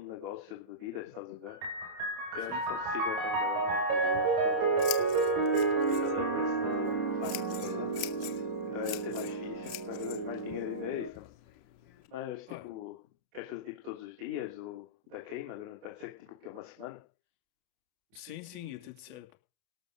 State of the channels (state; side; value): late; left; 28 ms